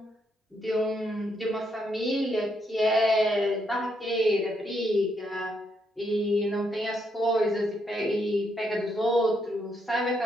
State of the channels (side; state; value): both; normal; correlation 0.76